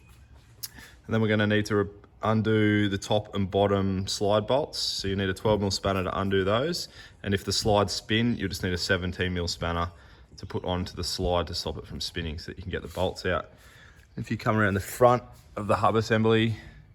then we're going to need to undo the top and bottom slide bolts. So you need a 12mm spanner to undo those. And if the slides spin, you'll just need a 17mm spanner to put onto the slide to stop it from spinning so that you can get the bolts out. If you come around the front of the hub assembly,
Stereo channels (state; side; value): identical; both; correlation 1.00